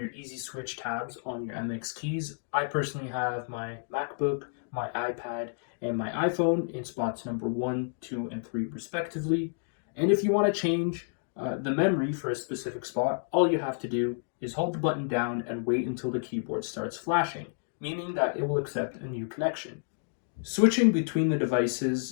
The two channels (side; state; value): right; silent; digital silence